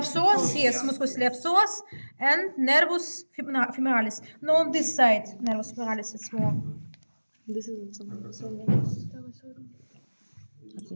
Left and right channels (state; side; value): inverted; both; correlation -1.00